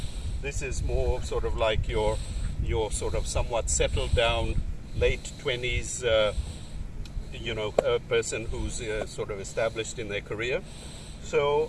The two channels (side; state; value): both; identical; correlation 1.00